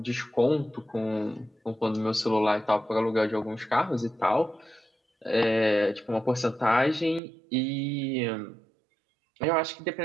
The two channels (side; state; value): left; drops out; at 7.2 s